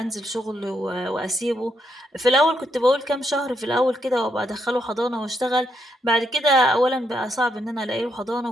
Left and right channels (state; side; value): normal; both; correlation 0.78